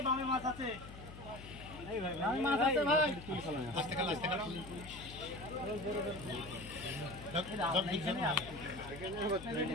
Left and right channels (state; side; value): noise; left; hum, 14 dB below the sound